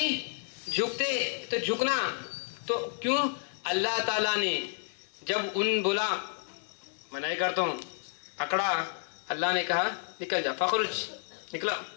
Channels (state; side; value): silent; right; digital silence